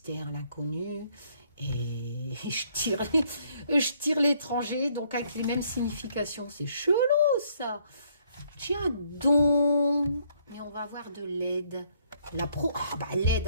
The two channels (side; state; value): both; inverted; correlation -0.68